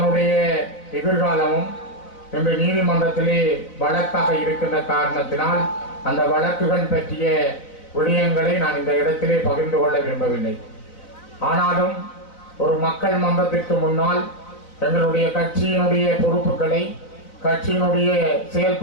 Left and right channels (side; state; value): right; late; 4.0 ms